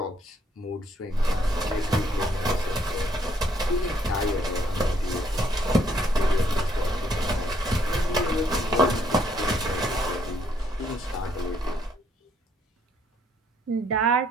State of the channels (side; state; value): both; normal; correlation 0.69